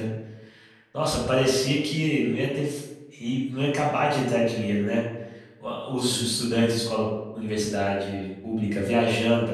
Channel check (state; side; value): identical; both; correlation 1.00